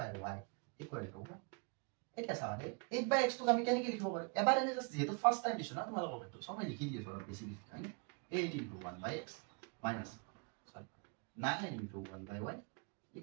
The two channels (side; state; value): left; quieter; 34.3 dB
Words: = এটা সামনে 8/x তো আমি কেনেকে লিখব পাৰো এবাৰ এনে জাস্ট যেহেতু ফাৰ্স্ট টাইম দিছো না তোমালোকৰ বেটো সবাই লিখি দিয়েছো অলপ বেছি হয়নে 8 * 1/x minus 9 * 1/y